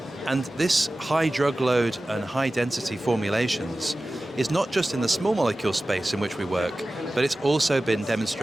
And this high drug load and high density formulations is not just in the small molecule space in which we work, but it's also been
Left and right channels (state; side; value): normal; both; correlation 0.96